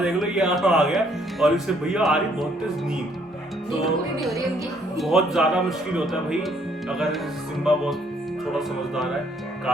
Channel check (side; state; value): both; normal; correlation 0.66